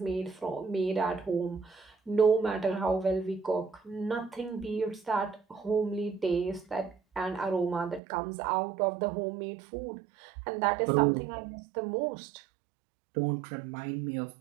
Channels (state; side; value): drops out; left; at 8.0 s